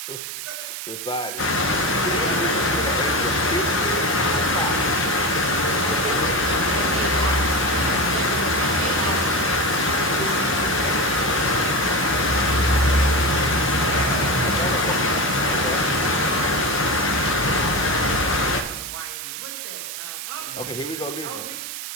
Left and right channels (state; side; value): noise; right; hiss, 8 dB below the sound